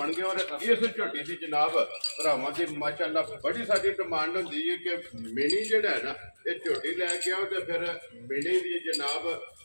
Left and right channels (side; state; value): both; inverted; correlation -1.00